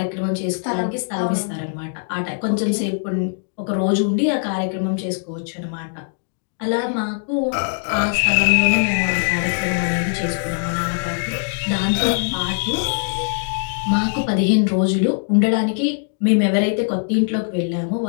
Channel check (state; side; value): silent; right; digital silence